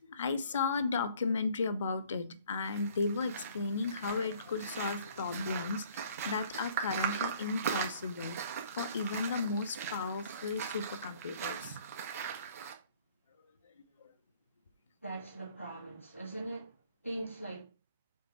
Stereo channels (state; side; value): inverted; both; correlation -0.56